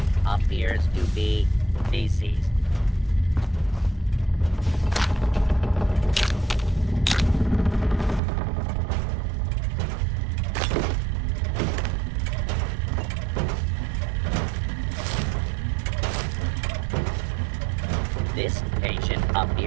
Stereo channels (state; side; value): drops out; left; at 8.2 s